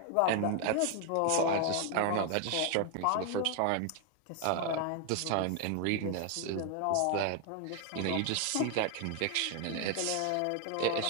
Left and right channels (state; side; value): different; both; correlation 0.00